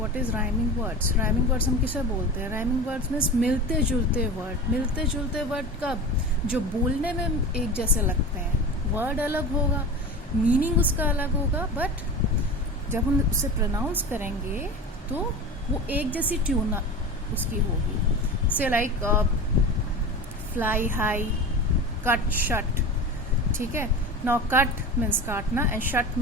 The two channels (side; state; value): both; normal; correlation 0.31